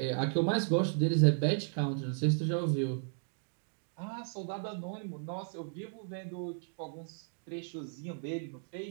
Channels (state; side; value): silent; left; digital silence